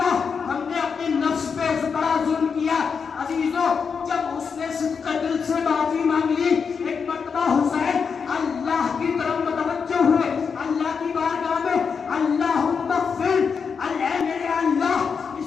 ہم نے اپنے نفس پہ بڑا ظلم کیا. عزیزوں, جب اس نے صدق دل سے معافی مانگ لی, ایک مرتبہ حسین اللہ کی طرف متوجہ ہوئے, اللہ کی بارگاہ میں اللہم اغفر, اے میرے اللہ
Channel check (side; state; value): right; quieter; 5.9 dB